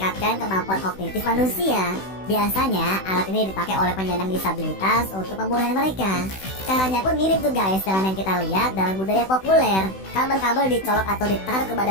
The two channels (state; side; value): late; right; 16 ms